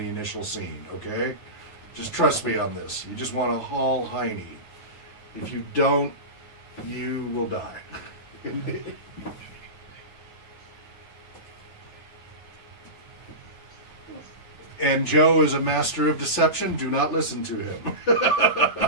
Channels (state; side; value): late; right; 9.5 ms